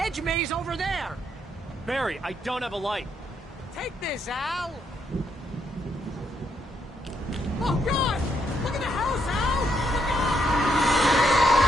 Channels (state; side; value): normal; both; correlation 0.76